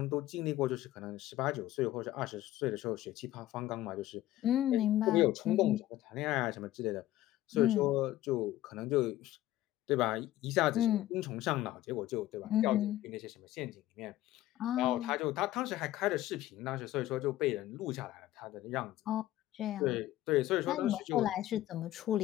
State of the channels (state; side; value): quieter; right; 14.7 dB